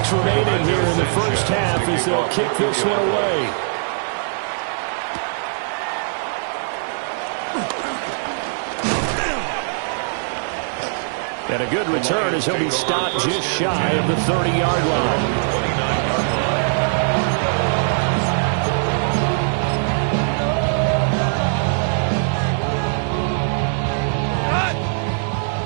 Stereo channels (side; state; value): left; silent; digital silence